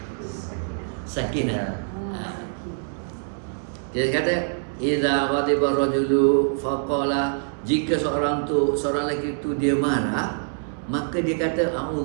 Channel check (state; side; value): silent; left; 62 dB below the other